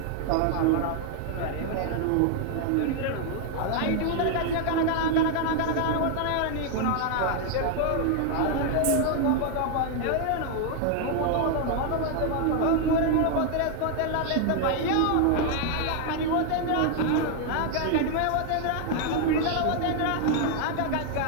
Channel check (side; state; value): both; different; correlation 0.00